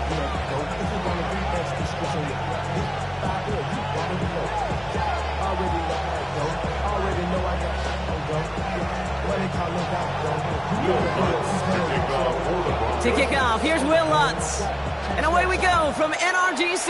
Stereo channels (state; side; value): identical; both; correlation 1.00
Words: To kick off, here's Will Lutz. And away we go from NRG